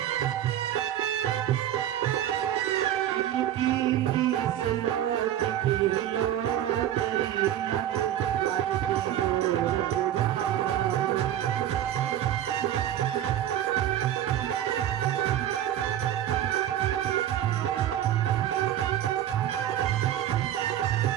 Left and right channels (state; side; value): quieter; left; 11.6 dB